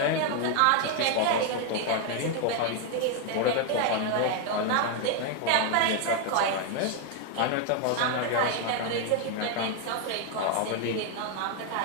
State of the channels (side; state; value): both; different; correlation 0.01